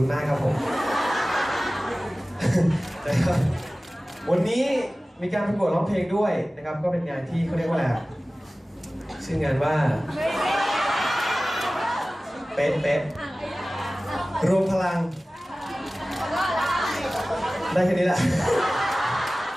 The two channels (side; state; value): both; normal; correlation 0.97